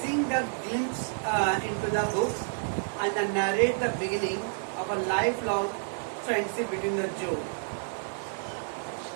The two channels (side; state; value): left; silent; digital silence